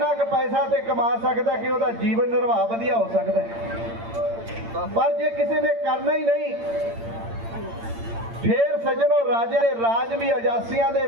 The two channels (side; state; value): left; late; 8.8 ms